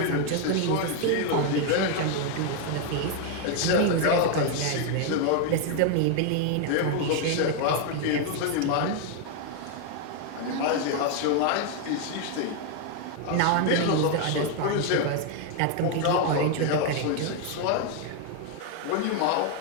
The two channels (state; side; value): different; both; correlation 0.01